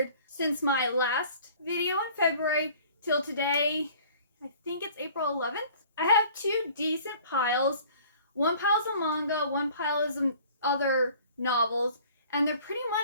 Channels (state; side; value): inverted; both; correlation -0.50